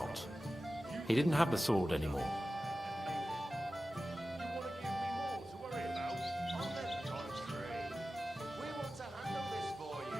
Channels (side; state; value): both; normal; correlation 0.95